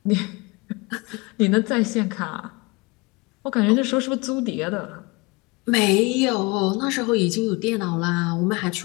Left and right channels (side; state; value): right; quieter; 25.7 dB